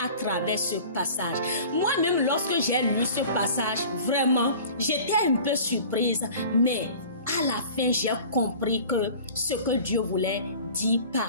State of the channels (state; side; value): inverted; both; correlation -0.43